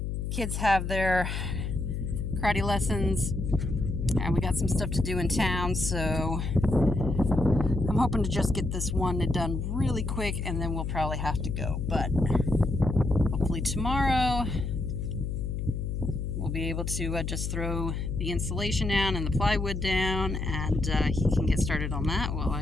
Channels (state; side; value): noise; left; hum, 3 dB below the sound